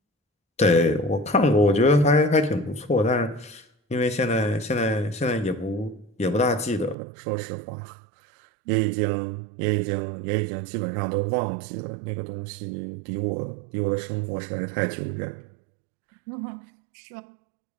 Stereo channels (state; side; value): drops out; left; at 7.0 s